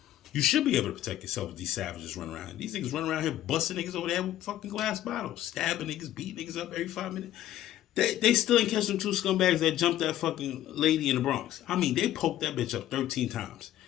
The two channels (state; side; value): quieter; right; 12.8 dB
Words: You should be able to protect yourself if these savages run around. These niggas run around here busting niggas over there with fucking glass bottles, stabbing niggas, beating niggas up every 5 minutes. They still ain't catch them two scumbags that jumped that fucking lady in the Bronx. I mean, they poked that bitch up 13 times.